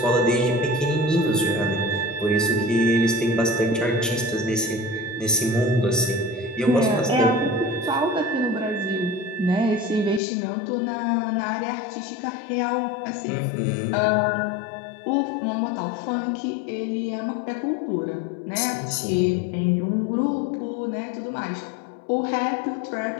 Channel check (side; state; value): right; drops out; at 10.2 s